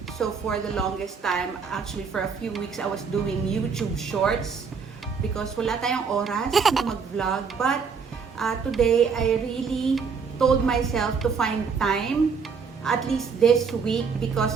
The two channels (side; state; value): left; quieter; 5.7 dB